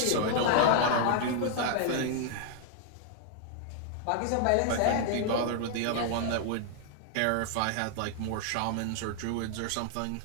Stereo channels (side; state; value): both; different; correlation 0.00